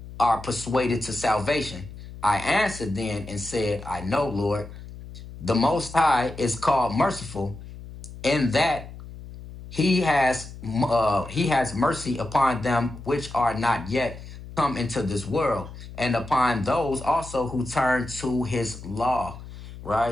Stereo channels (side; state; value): left; noise; hum, 14 dB below the sound